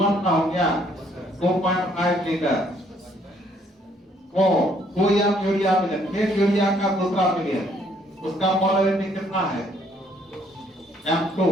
का हो गया 2.5 लीटर को 2 एम यूरिया मिले, एक यूरिया का दूसरा मिले, उसका मोलरिटी कितना है? M2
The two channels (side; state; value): both; normal; correlation 0.66